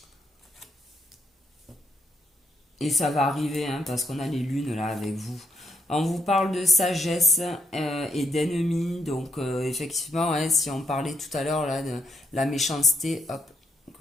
ça va arriver hein, parce qu'on a les lunes là avec vous. On vous parle de sagesse et d'ennemis, donc effectivement, hein, si on parlait tout à l'heure là de la méchanceté, hop,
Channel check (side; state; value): both; normal; correlation 0.77